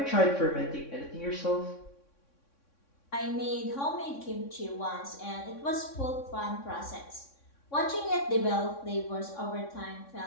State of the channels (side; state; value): right; late; 3.6 ms